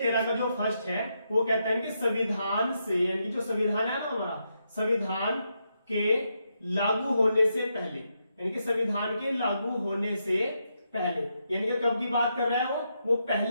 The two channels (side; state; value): both; inverted; correlation -0.82